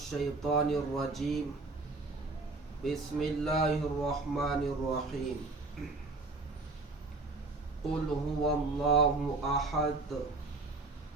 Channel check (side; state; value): left; quieter; 3.4 dB